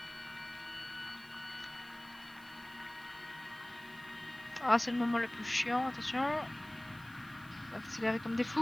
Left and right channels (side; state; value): right; noise; hiss, 23 dB below the sound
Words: Ah, c'est le moment le plus chiant, attention. On va accélérer comme des